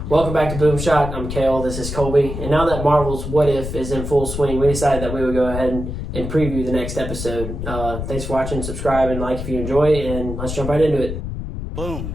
Welcome back to Boom Shot. I'm Kale. This is Colby. And now that Marvel's What If is in full swing, we decided that we would go ahead and preview the next episode. Thanks for watching. Subscribe and like if you enjoy, and let's jump right into it. Boom.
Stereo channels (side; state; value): left; noise; rumble, 6 dB below the sound